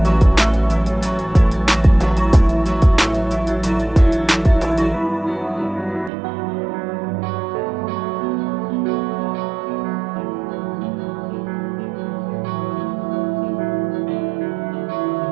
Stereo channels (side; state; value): left; drops out; at 6.1 s